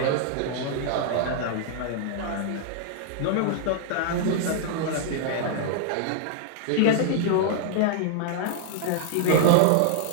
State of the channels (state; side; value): different; both; correlation -0.01